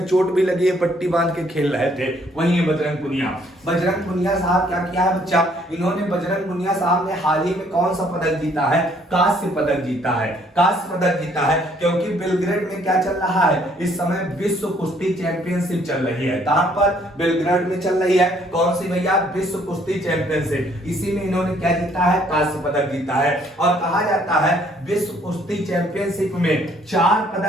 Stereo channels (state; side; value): normal; both; correlation 0.64